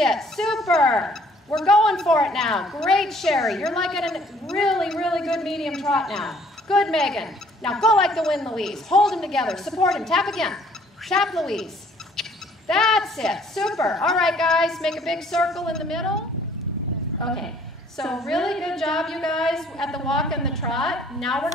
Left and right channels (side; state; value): both; normal; correlation 0.59